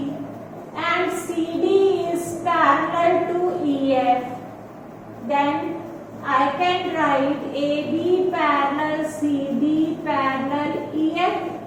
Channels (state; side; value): identical; both; correlation 1.00